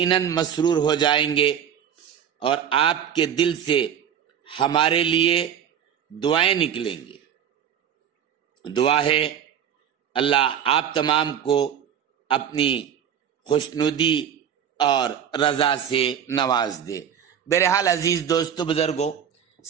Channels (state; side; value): quieter; left; 8.8 dB